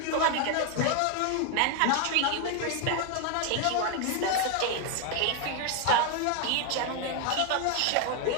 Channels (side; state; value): both; different; correlation 0.01